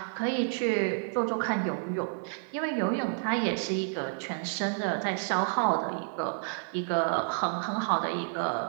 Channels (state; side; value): silent; left; 58 dB below the other